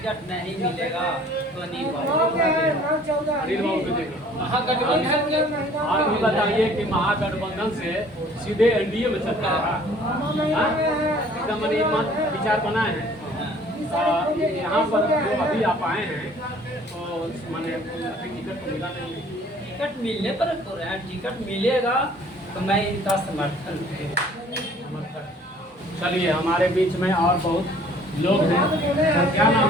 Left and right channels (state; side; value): normal; both; correlation 0.54